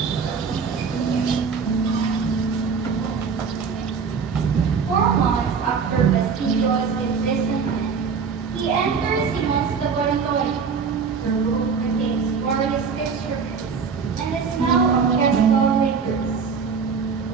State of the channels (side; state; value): left; quieter; 5.8 dB